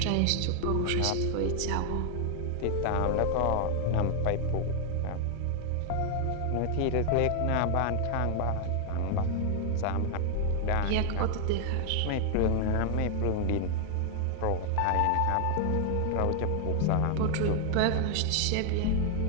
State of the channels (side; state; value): both; different; correlation 0.00